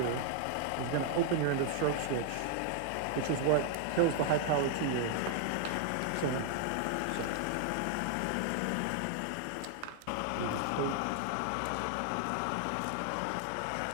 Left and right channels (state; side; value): different; both; correlation 0.00